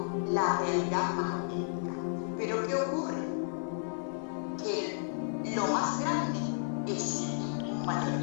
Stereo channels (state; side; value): silent; right; digital silence